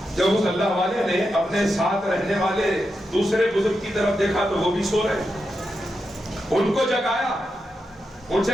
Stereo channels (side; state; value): both; normal; correlation 0.87